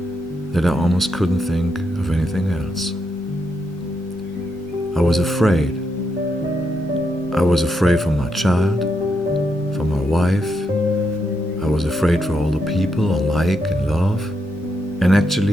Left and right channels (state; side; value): normal; both; correlation 0.81